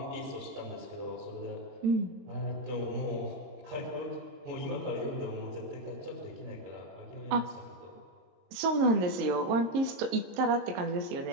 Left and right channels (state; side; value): late; left; 22 ms